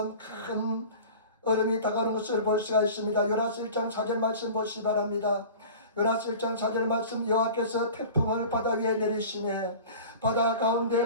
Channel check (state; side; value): inverted; both; correlation -0.39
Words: 큰 얼음이 다가오는 것을 볼 수가 있습니다. 요나서 1장 4절 말씀 보시기 바랍니다. 요나서 1장 4절 말씀, 여호와께서 태풍을 바다 위에 내리시매 바다